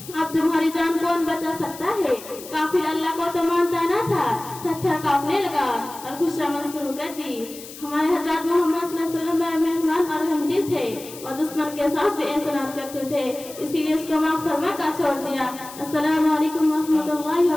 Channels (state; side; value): noise; left; hiss, 15 dB below the sound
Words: اب تمہاری جان کون بچا سکتا ہے؟ کافر اللہ کو تو مانتا نہ تھا. تھر تھر کانپنے لگا اور خوشامد شروع کر دی. ہمارے حضرات محمد صلی اللہ علیہ وسلم بڑے مہربان اور رحمدل تھے اور دشمن کے ساتھ بھی احسانات کرتے تھے. اسی لیے اس کو معاف فرما کر چھوڑ دیا. السلام علیکم ورحمۃ اللہ